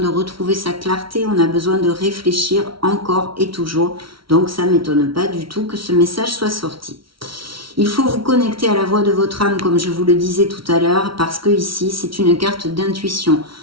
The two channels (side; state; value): left; late; 0.74 ms